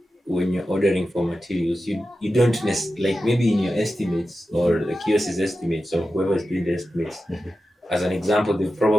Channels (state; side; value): normal; both; correlation 0.92